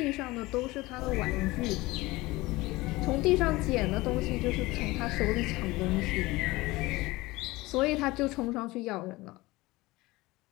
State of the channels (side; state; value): right; quieter; 20.5 dB